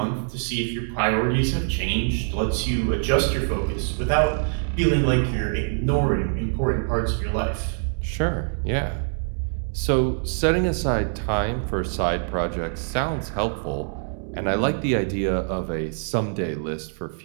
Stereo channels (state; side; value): silent; left; digital silence